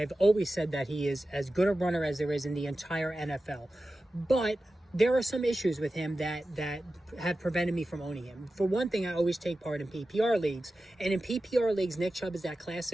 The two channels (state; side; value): normal; both; correlation 0.94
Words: always said that he is as good a runner as there is in the entire NFL. But there are some issues with him that have prevented me from owning him. For one thing, I always take part in PPR leagues. And in PPR leagues, Nick Chubb is that